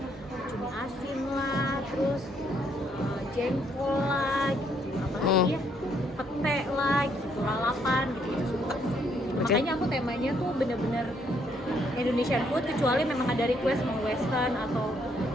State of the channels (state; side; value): normal; both; correlation 0.70